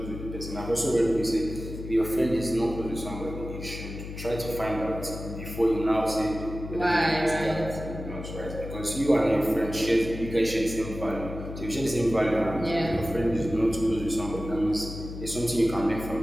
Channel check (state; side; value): noise; left; hum, 9 dB below the sound